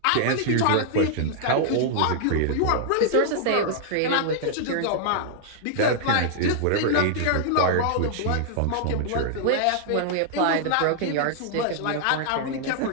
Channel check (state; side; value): different; both; correlation -0.01